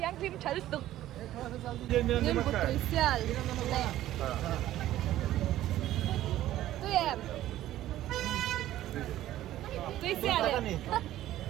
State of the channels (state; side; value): quieter; left; 13.8 dB